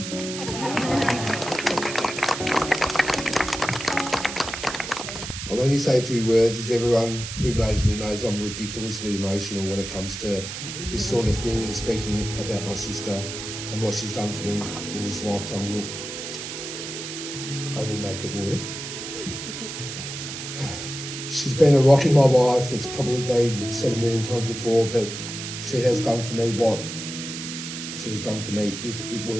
I'll only say a few words, as everyone who knows me knows I'm ridiculously emotional when it comes to this sort of thing, and speaking about my sister and what she's done for me in this lifetime will only make it worse. She's been a rock in my life. It's probably been said a million times before, but she has done for me what she's done for me. If it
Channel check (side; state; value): right; noise; hiss, 8 dB below the sound